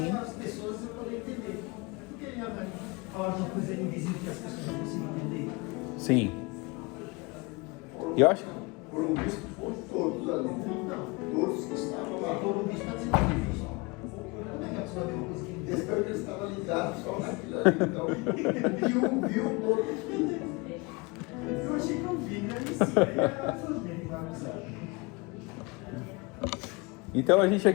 as pessoas poderem entender. Por que falar uma coisa invisível que as pessoas não conseguem entender? Sim. Eu acho. Foram vistos por todos ali. Todos que estavam lá. Foram vistos para ser difícil. Como é que a pessoa vê uma coisa que Desde que estava ligado só naquilo ali. Então, o que viu todos. eu achei que eu vi, né? Isso aí é tudo bem, vai avisar. Então a gente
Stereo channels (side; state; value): right; quieter; 26.4 dB